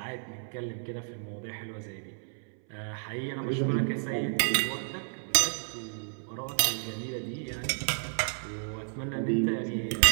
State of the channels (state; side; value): silent; left; 57 dB below the other